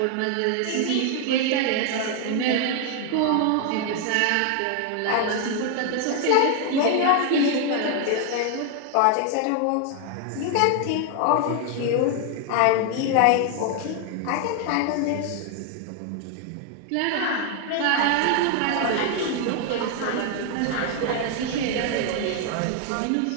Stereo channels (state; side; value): different; both; correlation 0.01